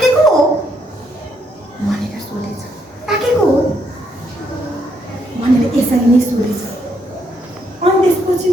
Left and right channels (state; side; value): normal; both; correlation 0.74